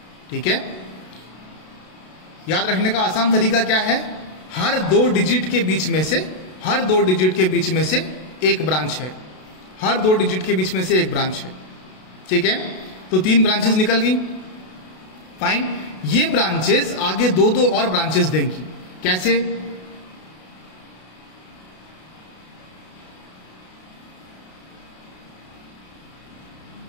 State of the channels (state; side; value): late; right; 32 ms